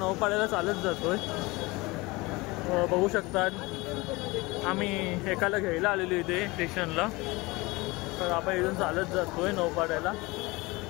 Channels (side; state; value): right; quieter; 23.1 dB